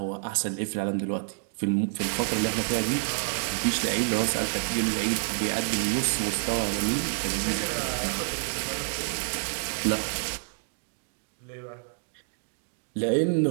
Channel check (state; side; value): silent; left; digital silence